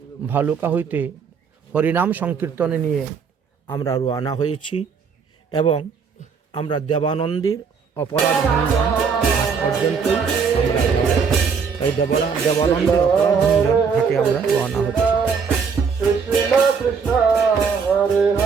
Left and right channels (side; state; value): left; quieter; 5.9 dB